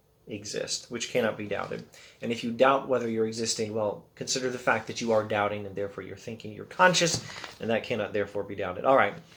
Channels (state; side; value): identical; both; correlation 1.00